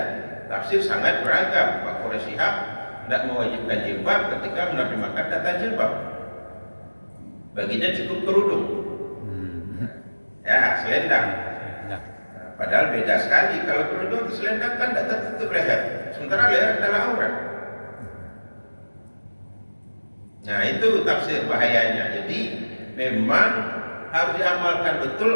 Tafsir sangat beragam. Pak Quraisy Shihab tidak mewajibkan jilbab ketika menerjemahkan kata jilbab. Baginya cukup kerudung. Ya, selendang. Nah, Padahal beda sekali. Kalau kerudung selendang kan tidak tertutup leher. Sementara leher adalah aurat. Nah, itu tafsir bahayanya. Jadi memang harus diamalkan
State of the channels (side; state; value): both; inverted; correlation -1.00